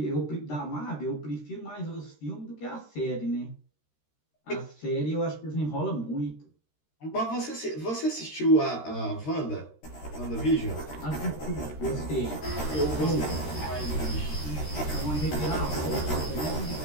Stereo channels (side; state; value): right; late; 13 ms